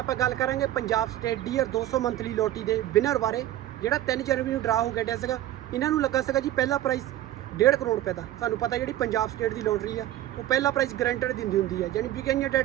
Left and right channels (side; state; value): left; quieter; 13.5 dB